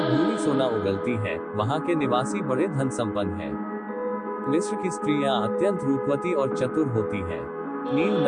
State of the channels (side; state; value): both; identical; correlation 1.00